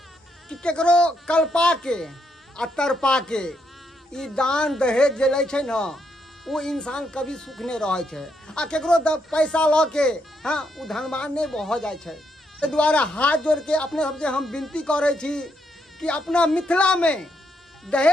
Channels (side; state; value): both; normal; correlation 0.77